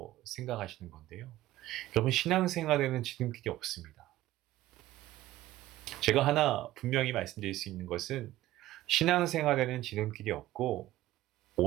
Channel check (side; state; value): left; quieter; 15.6 dB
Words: 생각하시는 건데요. 여러분, 신앙생활에는 지름길이 없습니다. 제가 하나 분명히 말씀드릴 수 있는 것은 신앙생활에는 지름길이 없고